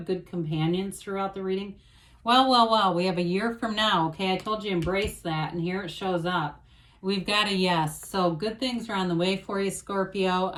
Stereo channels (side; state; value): both; identical; correlation 1.00